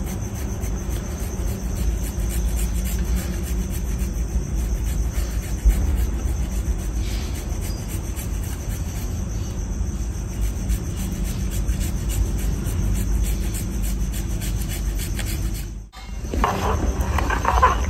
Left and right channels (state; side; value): identical; both; correlation 1.00